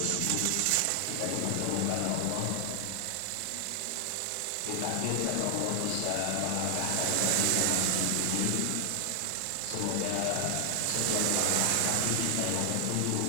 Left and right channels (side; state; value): both; different; correlation 0.00